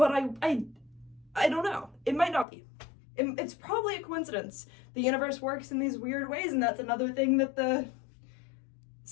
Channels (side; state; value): right; drops out; at 2.5 s